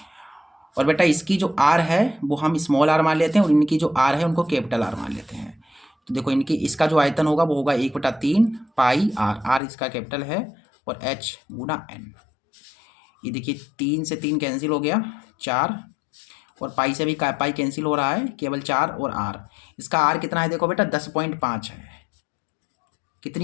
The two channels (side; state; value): right; drops out; at 9.6 s